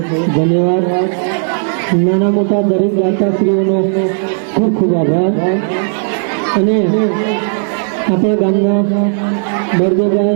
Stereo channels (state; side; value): silent; left; 67 dB below the other